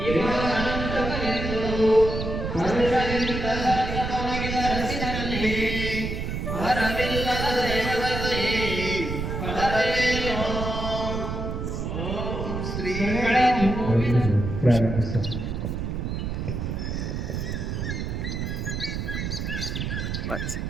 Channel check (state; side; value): noise; right; rumble, 3 dB below the sound